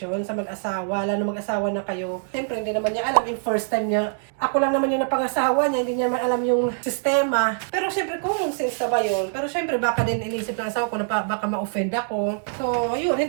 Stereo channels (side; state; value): left; silent; 63 dB below the other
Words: sa mag-asawa, lalo mag-asawa na kayo. Siyempre, hindi naman niya alam yung first time niya. Ako lang naman yung napangasawa niya, hindi niya naman alam yung sistema. Pero siyempre, common sense na ba yun? Pero siyempre, baka din inisip ng asawa ko na baka ma-offend ako. So, yun,